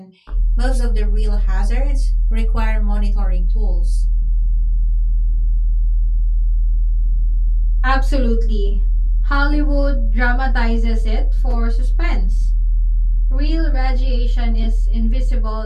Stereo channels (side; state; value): both; identical; correlation 1.00